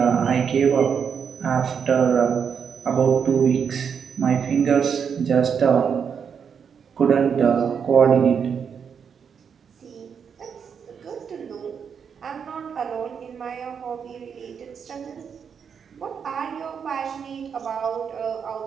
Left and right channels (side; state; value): left; quieter; 6.9 dB